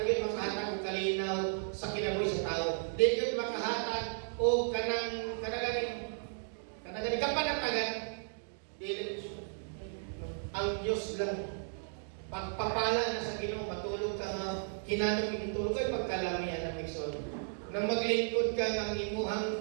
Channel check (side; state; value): left; silent; digital silence